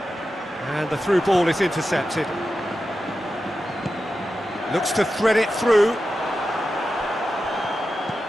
And the through ball is intercepted. Looks to thread it through.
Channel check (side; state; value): both; normal; correlation 0.91